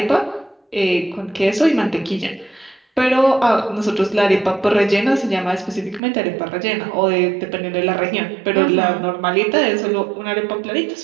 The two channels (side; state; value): left; drops out; at 6.0 s